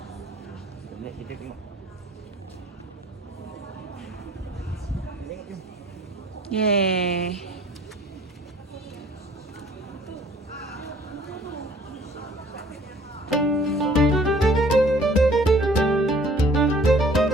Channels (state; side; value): normal; both; correlation 0.54